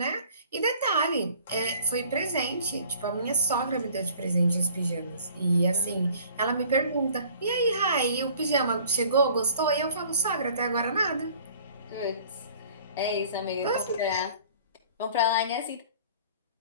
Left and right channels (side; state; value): both; inverted; correlation -0.52